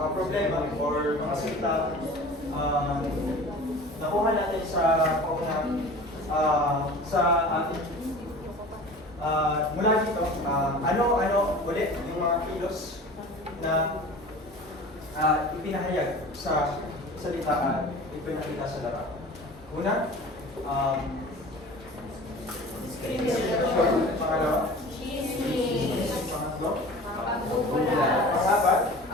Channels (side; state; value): both; normal; correlation 0.40